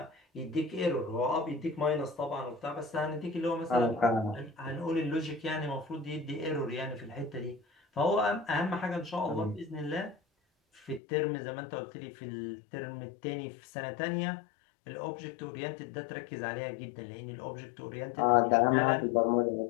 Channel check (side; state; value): right; drops out; at 11.0 s